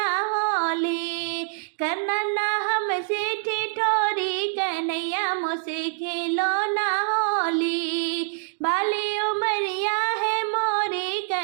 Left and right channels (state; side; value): silent; left; digital silence